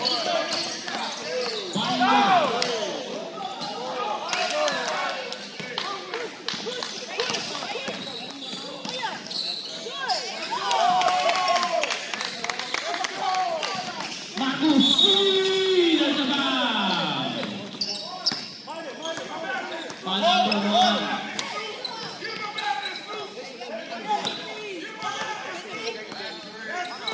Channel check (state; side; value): identical; both; correlation 1.00